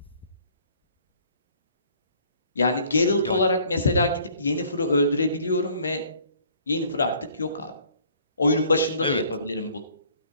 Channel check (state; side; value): inverted; both; correlation -0.57